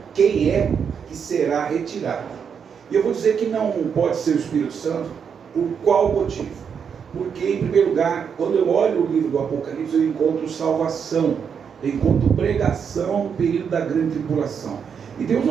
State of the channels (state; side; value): quieter; left; 7.0 dB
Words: quem é que será retirado. E eu vou dizer que não pode ser o Espírito Santo, por qual motivo? Porque, em primeiro lugar, quando eu olho o livro do Apocalipse, eu encontro salvação. enquanto pregação no período da grande tribulação. E Deus